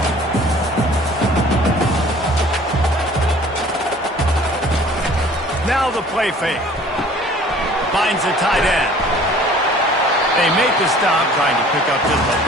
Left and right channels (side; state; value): both; normal; correlation 0.50